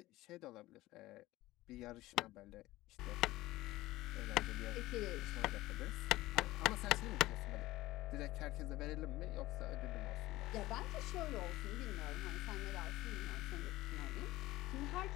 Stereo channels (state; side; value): quieter; right; 17.4 dB